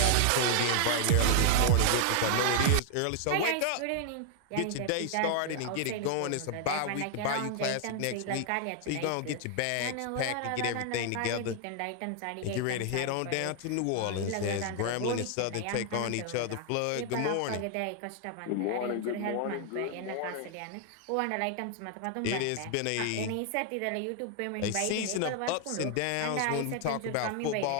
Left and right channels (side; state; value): both; different; correlation 0.00